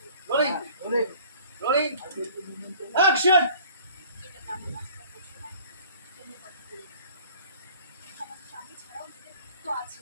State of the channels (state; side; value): inverted; both; correlation -0.50